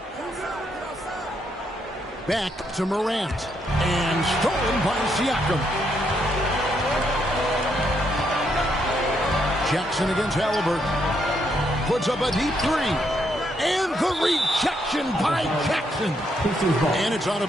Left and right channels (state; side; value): normal; both; correlation 0.76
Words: Back to Morant. And stolen by Siakam. Jackson against Halliburton. Puts up a deep 3. And the rejection by Jackson. And it's out